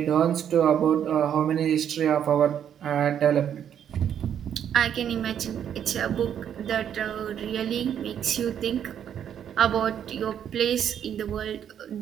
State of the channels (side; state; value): left; quieter; 9.2 dB